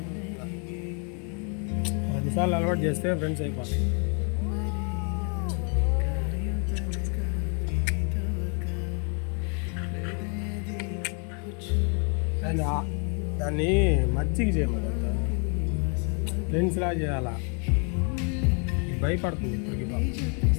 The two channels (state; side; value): quieter; right; 38.4 dB